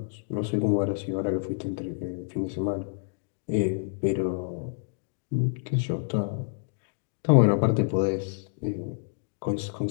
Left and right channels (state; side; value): silent; right; digital silence